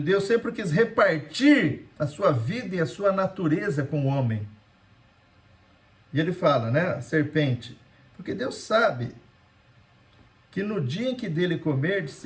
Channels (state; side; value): identical; both; correlation 1.00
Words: Deus sempre quis repartir a sua vida e a sua natureza com o homem. E ele fala, né, a serpente, porque Deus sabe que no dia em que dele comerdes,